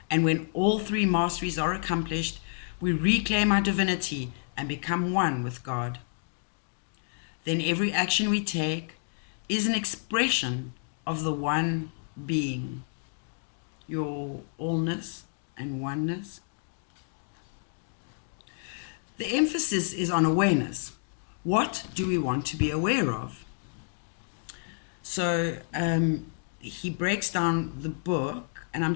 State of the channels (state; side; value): silent; right; digital silence